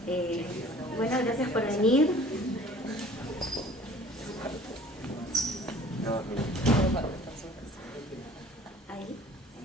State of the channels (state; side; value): normal; both; correlation 0.49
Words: Bueno, gracias por venir.